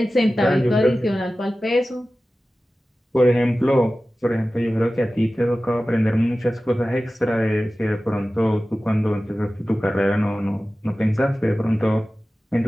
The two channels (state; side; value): normal; both; correlation 0.96